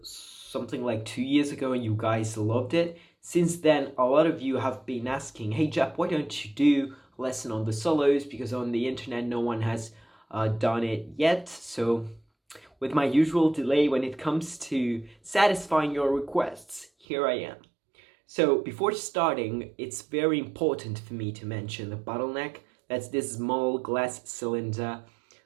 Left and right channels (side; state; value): left; drops out; at 17.1 s